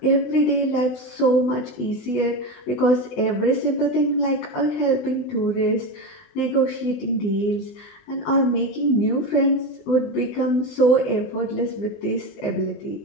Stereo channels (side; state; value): right; late; 20 ms